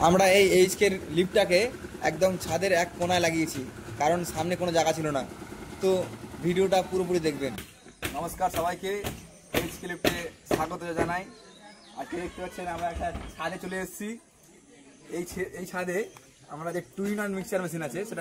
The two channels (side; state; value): both; identical; correlation 1.00